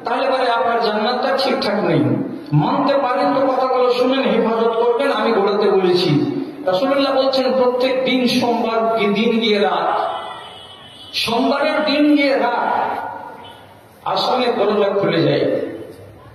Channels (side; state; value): both; identical; correlation 1.00